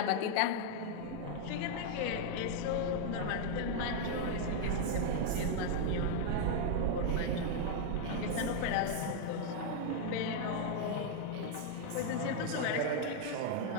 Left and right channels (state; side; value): different; both; correlation 0.00